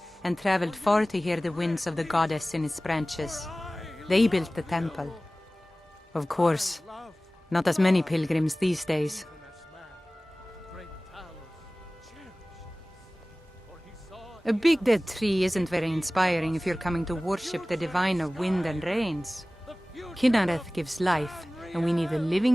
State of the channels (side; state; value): both; normal; correlation 0.98